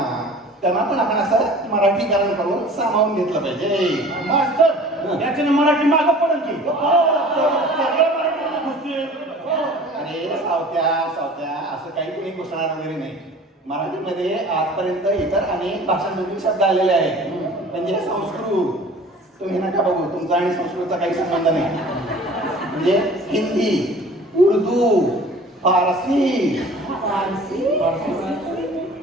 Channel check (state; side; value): normal; both; correlation 0.45